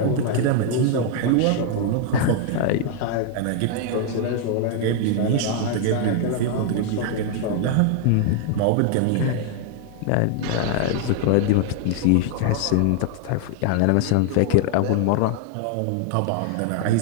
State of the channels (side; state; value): both; different; correlation 0.00